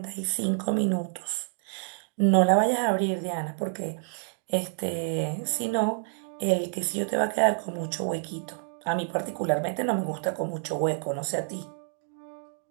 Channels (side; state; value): left; silent; digital silence